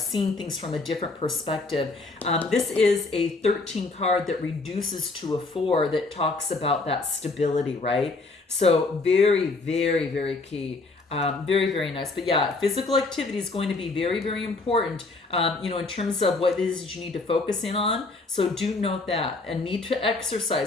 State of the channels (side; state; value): right; quieter; 3.5 dB